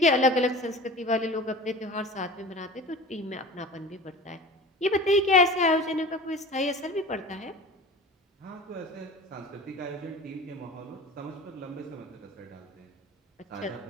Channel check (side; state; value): both; normal; correlation 0.37